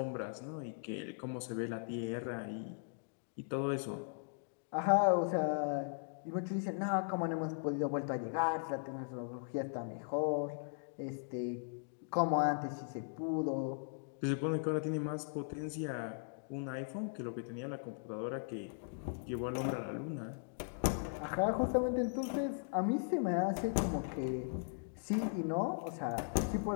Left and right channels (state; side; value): silent; right; digital silence